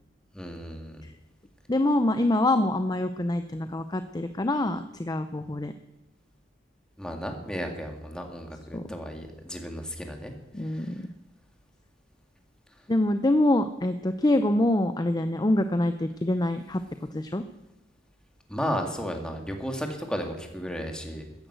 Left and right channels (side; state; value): both; normal; correlation 0.80